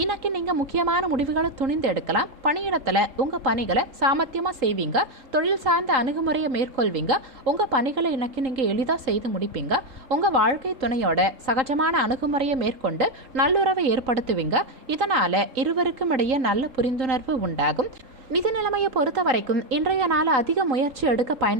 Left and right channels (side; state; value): left; late; 3.8 ms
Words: இன்னைக்கு நீங்க முக்கியமான முடிவுகளை துணிந்து எடுக்கலாம். பணியிடத்துல உங்க பணிகளை சாமர்த்தியமா செய்வீங்க. தொழில் சார்ந்த அணுகுமுறையை மேற்கொள்வீங்க. உங்க பணிகளை இன்னைக்கு நீங்க எளிதா செய்து முடிப்பீங்க. உங்க வாழ்க்கை துணையோட சகஜமான அணுகுமுறையை மேற்கொண்டு நல்லுறவை ஏற்படுத்துவீங்க. இதனால இருவருக்கும் இடையே நல்ல புரிந்துணர்வு உண்டாகும். நிதி நிலைமையை பொறுத்த வரைக்கும் இன்றைய நாள் அதிக முயற்சி எடுக்க